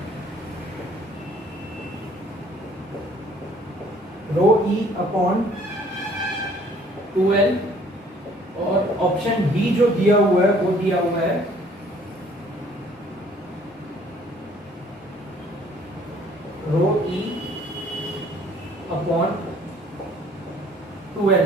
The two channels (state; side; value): normal; both; correlation 0.58